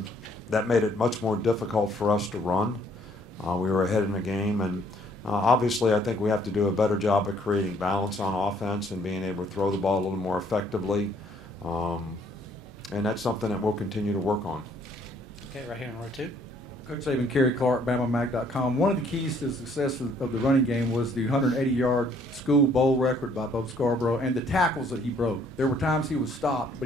that made it much more difficult for us to run. We were ahead in the game, and obviously I think we have to do a better job of creating balance on offense and being able to throw the ball a little more effectively, and that's something that we'll continue to work on. Okay, right here in row 2. Coach Saban, Kerry Clark, BamaMag.com. One of the keys to the success of the running game was the 180-yard school bowl record by Bo Scarborough and the tackles that he broke. There were times he was stopped, but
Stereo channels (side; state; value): both; normal; correlation 0.63